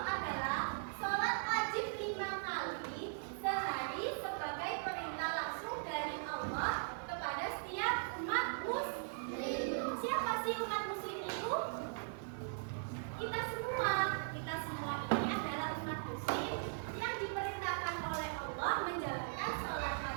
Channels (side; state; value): left; silent; 51 dB below the other